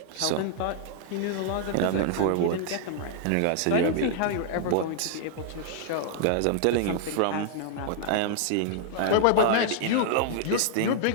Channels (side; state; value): both; different; correlation -0.01